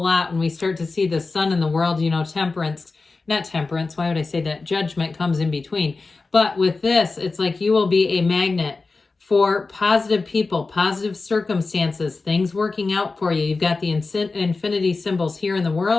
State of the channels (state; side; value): quieter; right; 3.9 dB